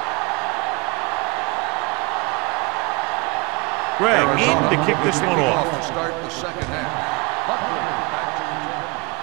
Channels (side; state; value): left; quieter; 27.1 dB